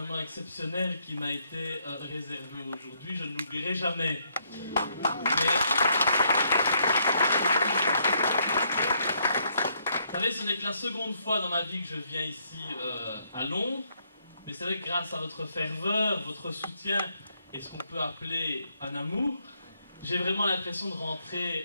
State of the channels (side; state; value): both; inverted; correlation -0.73